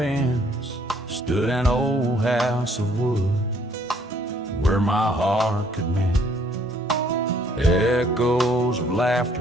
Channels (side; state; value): both; normal; correlation 0.63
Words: stood an old house of wood, where my heart could mend. Echoes of laughter